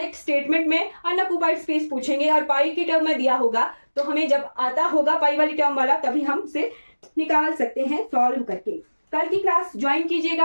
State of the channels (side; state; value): both; inverted; correlation -1.00